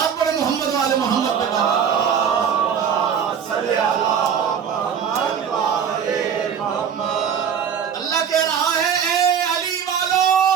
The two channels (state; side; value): quieter; left; 7.7 dB